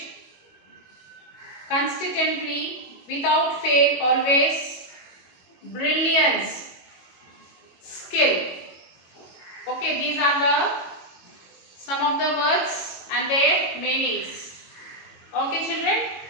consistently, without fail, always. Brilliance, skill. Okay, these are the some of the words and their meanings. Okay children,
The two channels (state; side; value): late; right; 22 ms